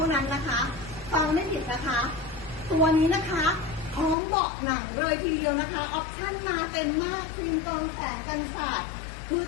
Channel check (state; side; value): drops out; right; at 4.2 s